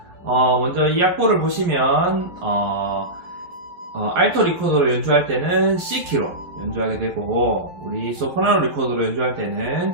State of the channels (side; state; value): left; late; 11 ms